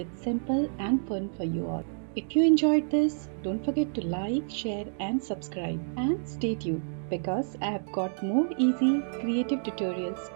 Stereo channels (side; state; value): left; silent; digital silence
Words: simple and fun for you all. If you enjoyed this, don't forget to like, share and subscribe. And stay tuned because I have got more easy, creative tutorials